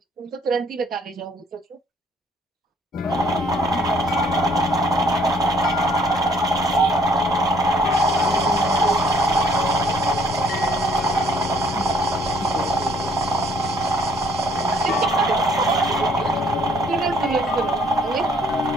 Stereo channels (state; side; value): normal; both; correlation 0.63